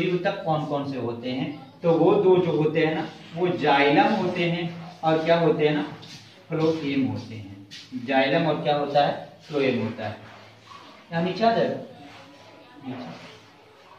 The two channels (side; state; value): both; identical; correlation 1.00